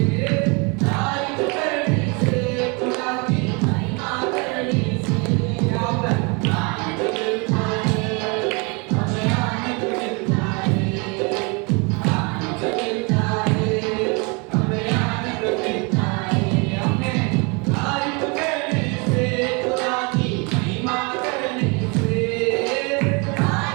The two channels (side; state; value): left; quieter; 31.1 dB